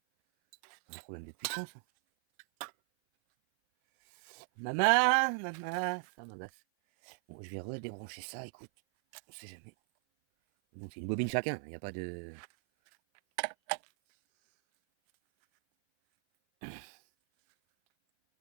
C'est un problème de puissance. Hein. Maman, ça m'agace. Bon, je vais redébrancher ça, écoute. On sait jamais. Donc c'est une bobine chacun, il n'y a pas de...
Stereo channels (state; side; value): silent; left; 54 dB below the other